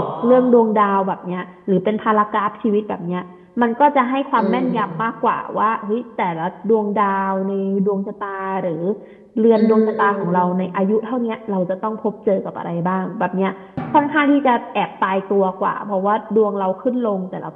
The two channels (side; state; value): both; identical; correlation 1.00